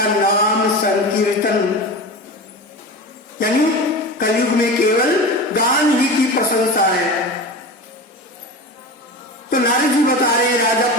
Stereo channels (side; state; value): both; normal; correlation 0.28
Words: नाम संकीर्तन, यानी कलयुग में केवल गान ही की प्रशंसा है। तो नारद जी बता रहे राजा